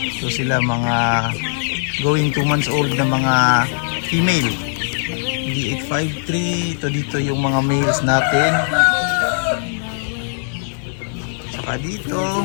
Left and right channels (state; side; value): silent; right; digital silence